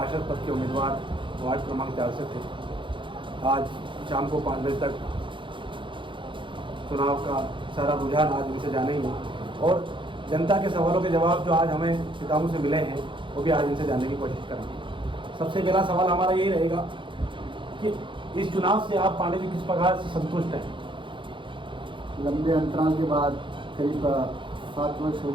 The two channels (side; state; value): left; late; 0.24 ms